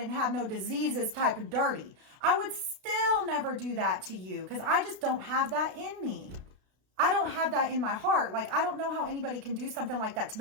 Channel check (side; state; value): left; late; 32 ms